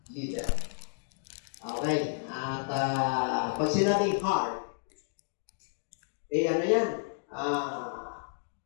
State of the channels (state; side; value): silent; right; digital silence